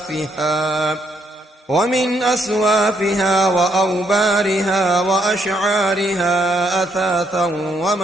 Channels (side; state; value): both; normal; correlation 0.73